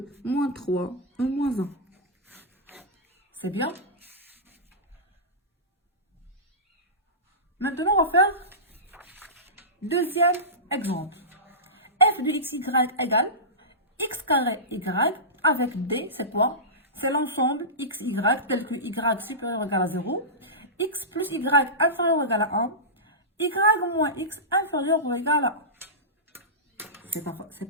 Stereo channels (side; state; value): both; normal; correlation -0.19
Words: moins 3, 1 moins 1. C'est bien? Maintenant, on va faire deuxième exemple. F de xy égale x carré y avec d, c'est quoi? C'est l'ensemble xy tel que y supérieur ou égal à 0, x plus y inférieur ou égal à 1, y moins x inférieur ou égal à 1. C'est